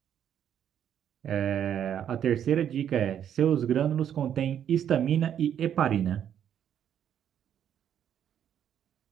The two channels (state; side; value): quieter; left; 9.5 dB